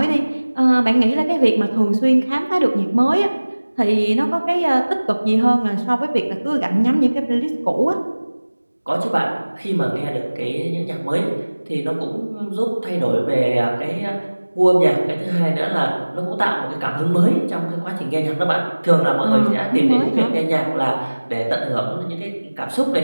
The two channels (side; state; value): both; inverted; correlation -1.00